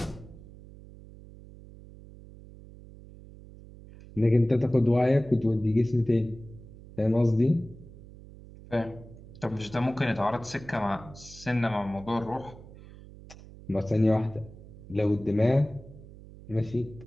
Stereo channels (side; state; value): right; noise; hum, 18 dB below the sound